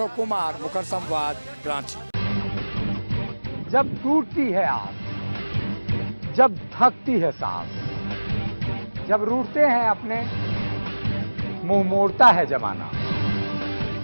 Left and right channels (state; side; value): inverted; both; correlation -1.00